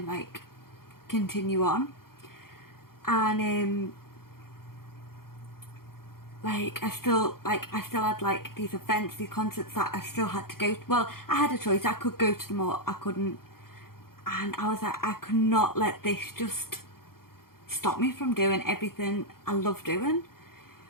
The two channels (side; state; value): right; late; 0.93 ms